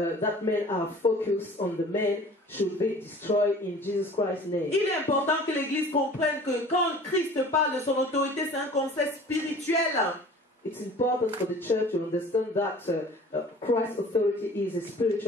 men are focused on the men should be destroyed in Jesus Christ's name. Il est important que l'Église comprenne que quand Christ parle de son autorité, c'est un concept spirituel. It's important for the church to understand that Christ's authority is a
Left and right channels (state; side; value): normal; both; correlation 0.45